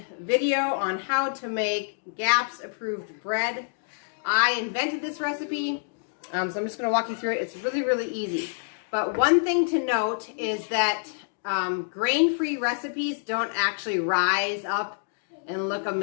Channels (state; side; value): silent; right; digital silence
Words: video on how to make GAPS approved bread. I invented this recipe, so I'm just going to walk you through it. It's really easy. But one thing to note is that grain-free recipes don't actually rise up and look